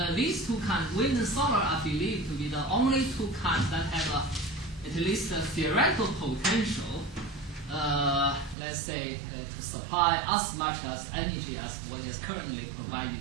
these two kinds, wind and solar, are believed to be the only two kinds that have at least a theoretical potential, let's say, to supply as much as energy as what is currently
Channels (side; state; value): left; drops out; at 8.6 s